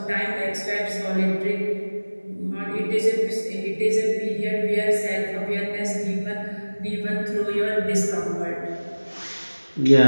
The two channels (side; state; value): both; inverted; correlation -1.00